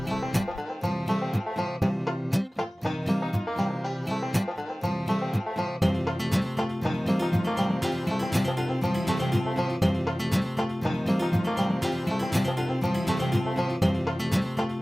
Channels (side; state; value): both; normal; correlation 0.98